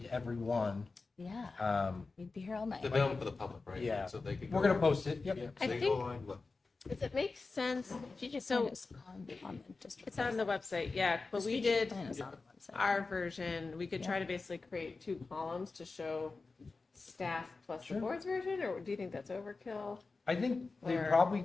every one. Yeah, we'd be here all night. It's available for the public, right? Yeah. So they could We're go- going to post it. Yep. Yeah, so I they think- go online, look. Does it make sense? She just So- find us on the district. It's on the website, yeah, but we Strategic did plan is on the website. our version. We could try to basically create 2 columns to show staff plus Sure. the board's version, or do you think that's overkill? I think they Or-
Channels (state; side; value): quieter; right; 3.9 dB